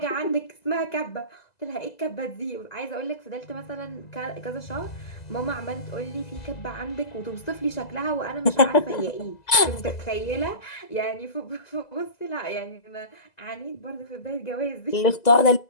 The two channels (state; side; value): late; right; 2.0 ms